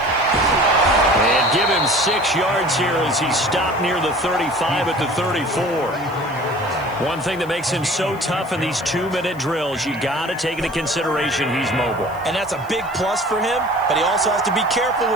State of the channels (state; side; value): noise; left; hiss, 25 dB below the sound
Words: And give him 6 yards here as he stopped near the 35 at the 34. One thing that makes him so tough in these 2-minute drills, you got to take into consideration he's mobile. And that's a big plus for him, but he also has to be careful